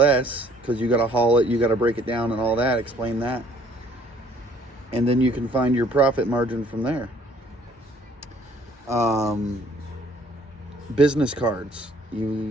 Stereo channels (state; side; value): normal; both; correlation 0.60